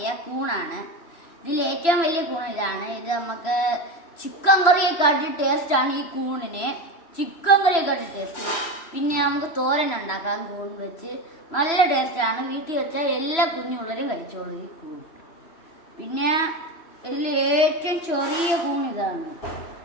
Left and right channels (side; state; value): right; late; 3.0 ms